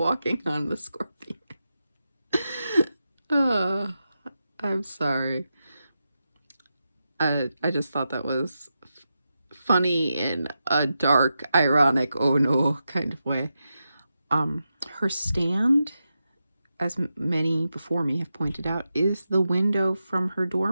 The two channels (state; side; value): inverted; both; correlation -0.89